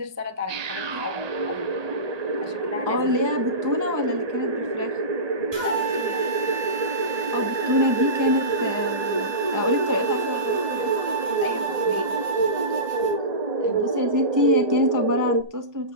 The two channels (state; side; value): late; left; 1.2 ms